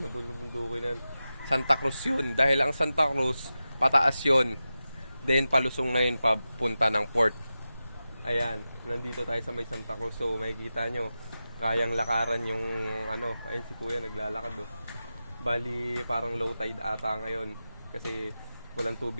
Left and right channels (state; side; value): inverted; both; correlation -0.93